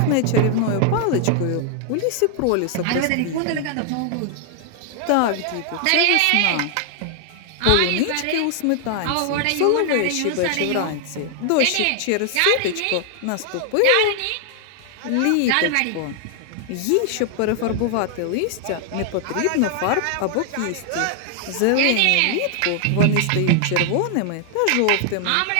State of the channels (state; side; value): different; both; correlation 0.00